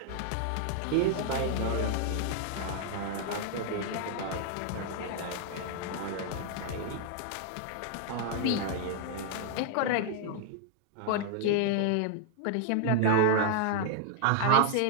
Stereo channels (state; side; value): different; both; correlation 0.00